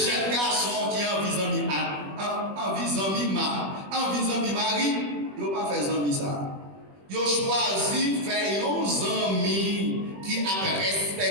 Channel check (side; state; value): left; late; 21 ms